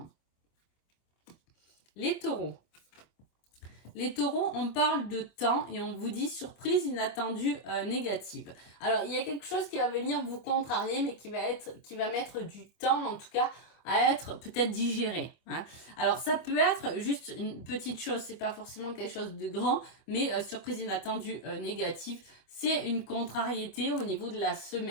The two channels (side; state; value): right; late; 25 ms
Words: Les taureaux. Les taureaux, on parle de temps et on vous dit surprise inattendue négative. Alors, il y a quelque chose qui va venir vous contrarier, mais qui va mettre du temps, en tout cas, à être peut-être digéré, hein. Alors, ça peut être juste une petite chose, c'est pas forcément quelque chose de grand, mais surprise inattendue négative, c'est une contrariété au niveau de la